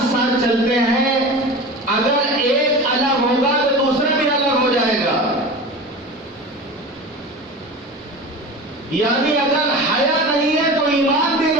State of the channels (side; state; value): both; normal; correlation 0.32